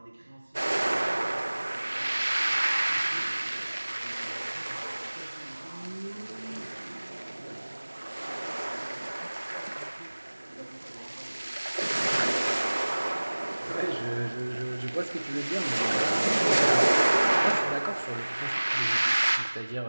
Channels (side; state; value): both; inverted; correlation -1.00